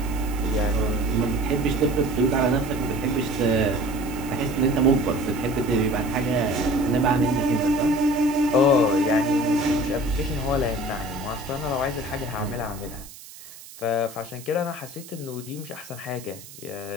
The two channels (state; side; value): noise; right; hiss, 17 dB below the sound